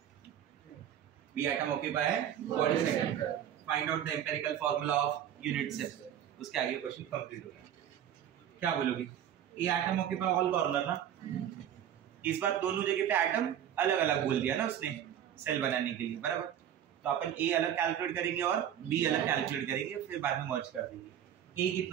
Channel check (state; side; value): quieter; left; 10.1 dB